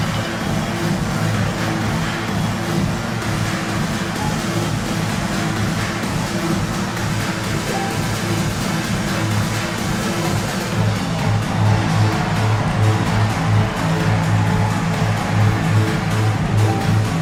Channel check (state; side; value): identical; both; correlation 1.00